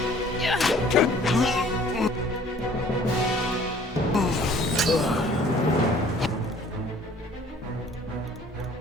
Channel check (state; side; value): normal; both; correlation 0.54